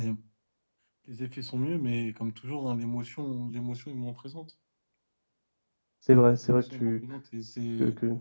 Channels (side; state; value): both; inverted; correlation -1.00